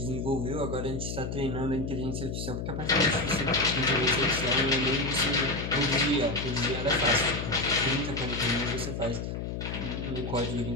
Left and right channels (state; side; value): noise; left; hum, 4 dB below the sound